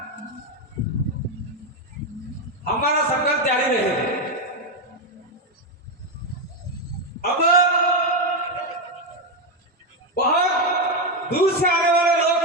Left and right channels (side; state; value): both; normal; correlation 0.07